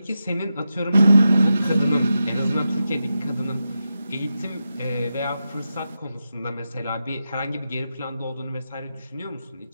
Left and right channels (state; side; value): inverted; both; correlation -0.89